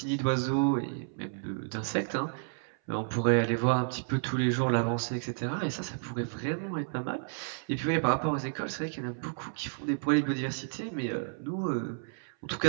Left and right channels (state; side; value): silent; left; 57 dB below the other